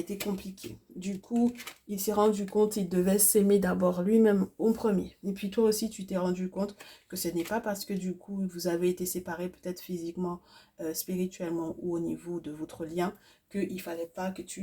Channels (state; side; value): identical; both; correlation 1.00